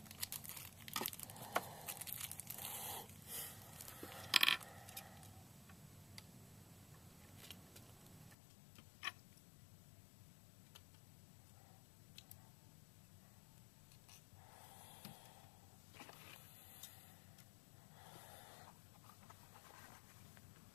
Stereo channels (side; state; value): right; drops out; at 8.3 s